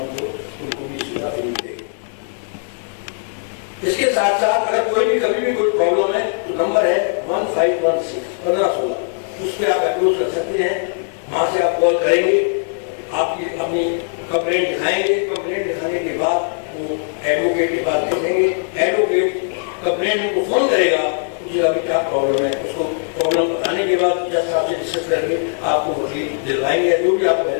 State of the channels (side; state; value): right; silent; digital silence